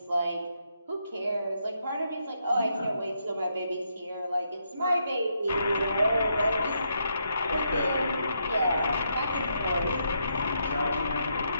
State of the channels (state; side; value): inverted; both; correlation -0.78